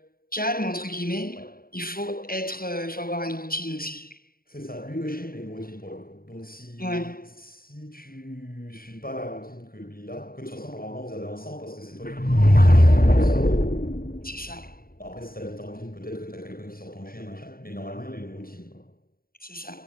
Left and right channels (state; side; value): late; right; 0.43 ms